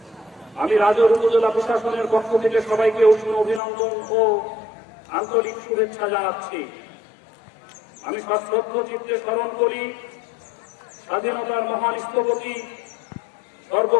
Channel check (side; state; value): right; drops out; at 3.6 s